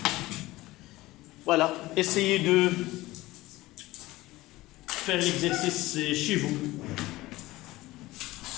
Voilà. Essayez de faire l'exercice chez vous.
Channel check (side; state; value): right; quieter; 18.5 dB